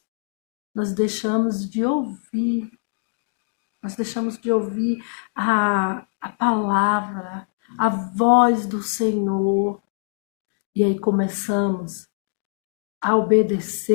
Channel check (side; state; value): right; silent; 63 dB below the other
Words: Nós deixamos de ouvir Nós deixamos de ouvir a palavra, a voz do Senhor. E aí começamos a